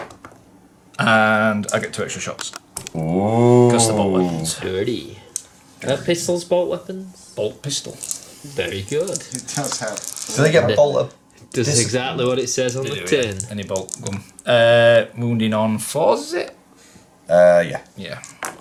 and I get 2 extra shots. Ooh. Because the bolt weapons. Dirty. Pistols, bolt weapons? Bolt pistol. Very good. It does help. Do they get bolted? Does This- exactly what it says on the They do, tin. yeah. Any bolt gun. Wounding on 4s, is it? Yeah. Yeah.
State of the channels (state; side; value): identical; both; correlation 1.00